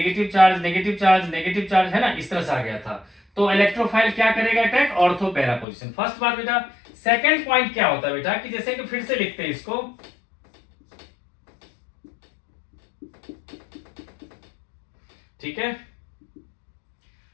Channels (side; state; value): right; drops out; at 5.7 s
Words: charge negative charge negative charge है ना, इस तरह से आ गया था। तो इलेक्ट्रोफाइल क्या करेगा attack ortho para position, first बात बेटा। सेकंड पॉइंट क्या होता है बेटा कि जैसे कि फिर से लिखते हैं इसको ठीक है।